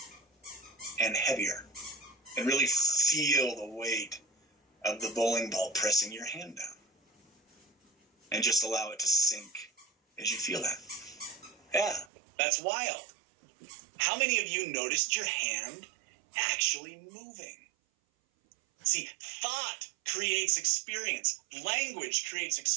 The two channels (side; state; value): left; drops out; at 12.1 s